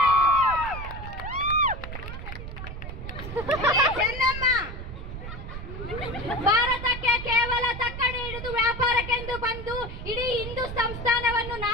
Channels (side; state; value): right; noise; rumble, 8 dB below the sound